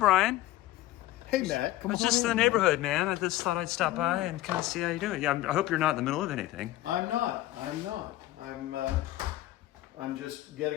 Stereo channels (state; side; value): quieter; right; 15.8 dB